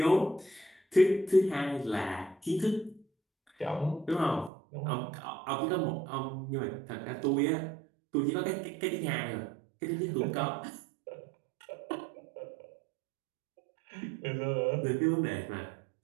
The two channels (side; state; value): left; drops out; at 4.5 s